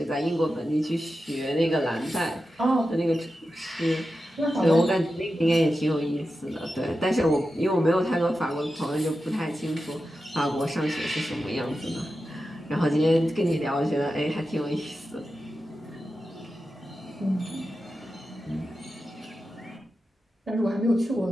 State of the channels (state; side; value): normal; both; correlation 0.91